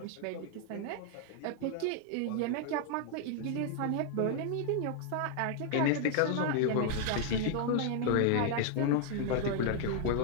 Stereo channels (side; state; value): both; different; correlation 0.00